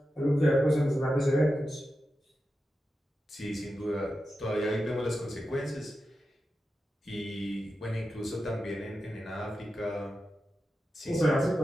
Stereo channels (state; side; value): normal; both; correlation 0.90